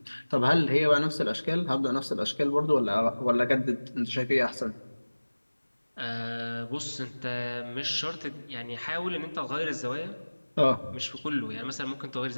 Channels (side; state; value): both; inverted; correlation -1.00